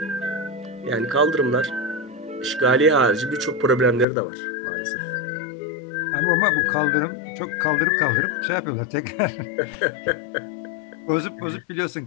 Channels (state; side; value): drops out; right; at 4.0 s